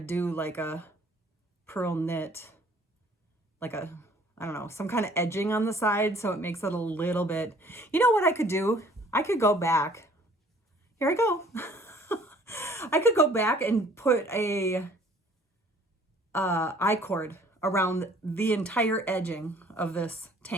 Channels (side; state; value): both; normal; correlation 0.55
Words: do like a pearl knit, like I don't know, some kind of edging on the side so it makes it a little bit, you know what I could do? I could go back. Here I go. I could go back and put a I-cord around the entire edging of this